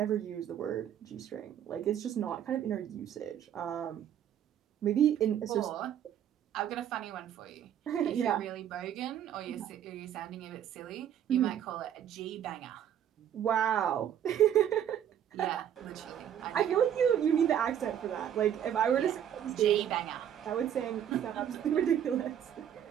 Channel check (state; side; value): quieter; left; 9.9 dB